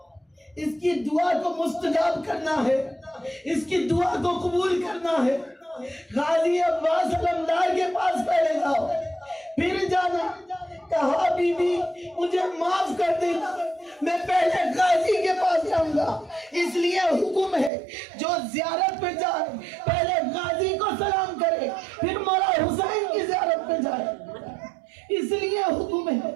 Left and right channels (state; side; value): drops out; left; at 17.7 s